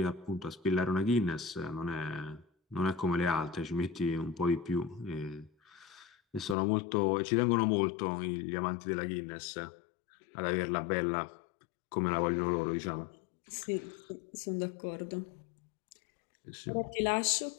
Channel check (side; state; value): right; drops out; at 6.6 s